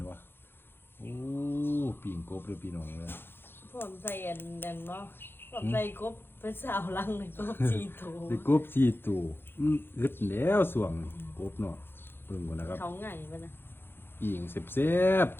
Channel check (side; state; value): right; late; 0.10 ms